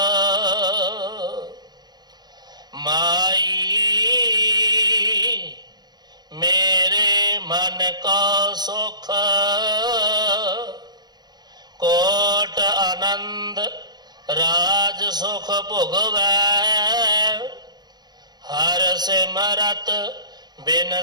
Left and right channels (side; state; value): left; late; 0.20 ms